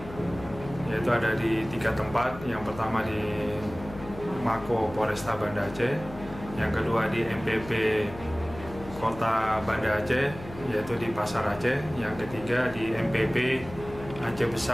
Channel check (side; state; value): left; noise; hum, 14 dB below the sound